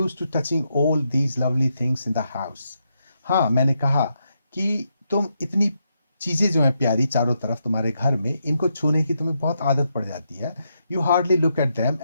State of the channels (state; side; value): inverted; both; correlation -0.81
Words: to touching all these lovely things in the house. हाँ, मैंने कहा कि तुम इतनी चीजें जो हैं प्यारी चारों तरफ तुम्हारे घर में, इनको छूने की तुम्हें बहुत आदत पड़ जाती है। You hardly look at them